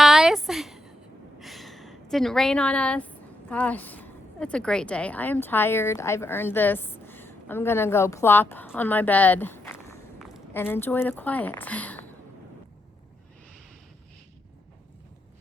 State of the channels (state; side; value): normal; both; correlation 0.82